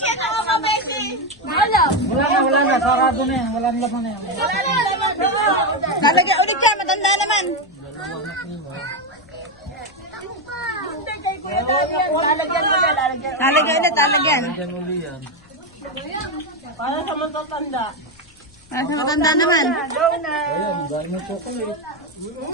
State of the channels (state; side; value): noise; left; rumble, 27 dB below the sound